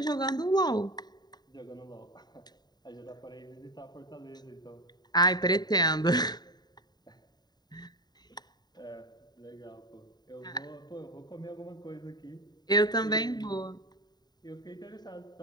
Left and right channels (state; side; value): late; right; 0.20 ms